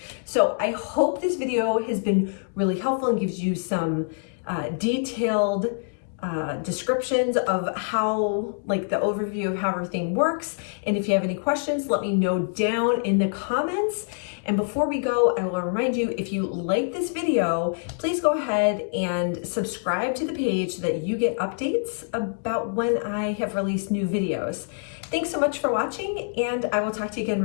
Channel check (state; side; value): silent; right; digital silence